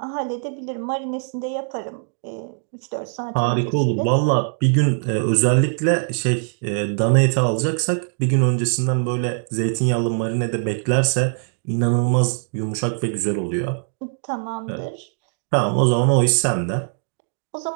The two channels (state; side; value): silent; left; 64 dB below the other